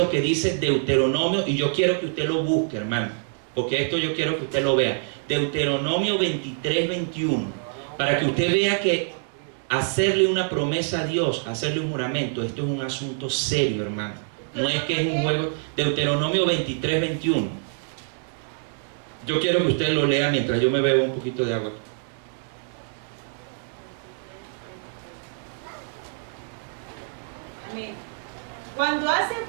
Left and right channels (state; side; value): silent; left; digital silence